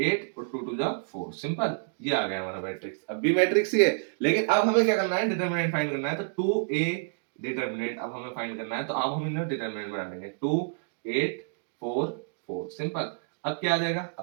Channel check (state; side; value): silent; left; digital silence